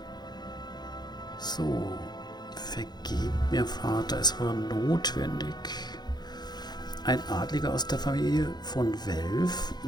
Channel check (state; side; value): late; right; 0.20 ms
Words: So, Vergebt mir, Vater, es war notwendig. Ein Adliger aus der Familie von Welf